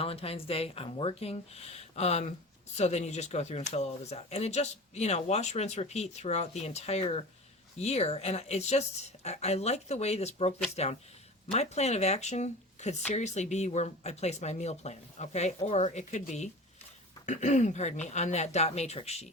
Day, I'm working. So then you just go through and fill all this out. And it just, you know, wash, rinse, repeat throughout the entire year. And it's just, I like the way this broke this down. My plan of action could seriously be where I place my meal plan, okay? Or it could be pardon me, on that dot matrix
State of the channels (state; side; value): normal; both; correlation 0.35